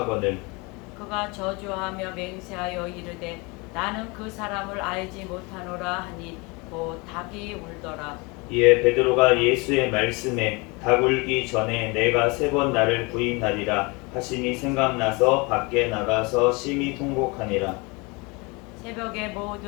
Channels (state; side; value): quieter; right; 27.6 dB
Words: 그가 저주하며 맹세하여 이르되 나는 그 사람을 알지 못하노라 하니 곧 닭이 울더라. 이에 베드로가 예수의 말씀에 닭 울기 전에 내가 3번 나를 부인하리라 하시니 생각나서 밖에 나가서 심히 통곡하니라. 새벽에